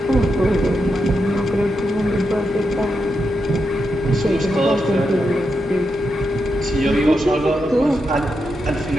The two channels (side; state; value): both; normal; correlation 0.85